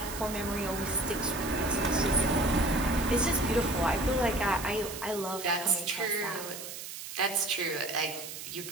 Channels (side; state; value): right; noise; hiss, 10 dB below the sound